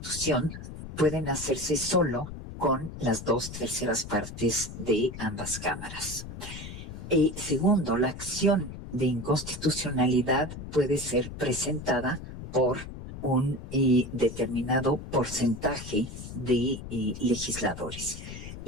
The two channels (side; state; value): left; noise; rumble, 10 dB below the sound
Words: pueden hacerse solo con las 2/3 partes de ambas cámaras. Segundo, la acción de inconstitucionalidad puede ser presentada por un determinado porcentaje de legisladores.